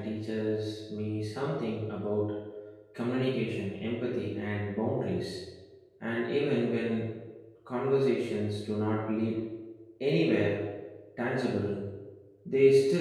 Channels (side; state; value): both; identical; correlation 1.00